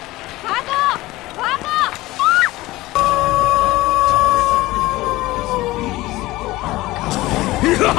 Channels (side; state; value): right; quieter; 18.6 dB